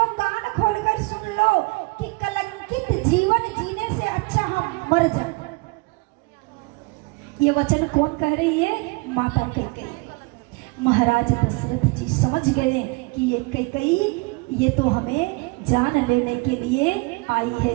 कान खोलकर सुन लो कि कलंकित जीवन जीने से अच्छा हम मर जाए। ये वचन कौन कह रही है? माता कैकेयी। महाराज दशरथ जी समझ गए कि ये कैकेयी ये तो हमें जान लेने के लिए आई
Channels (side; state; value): left; quieter; 27.2 dB